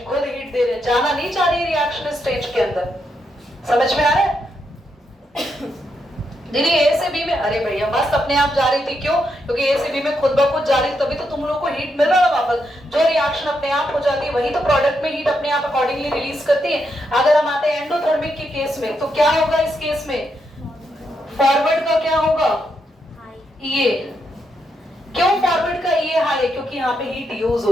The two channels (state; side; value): normal; both; correlation 0.81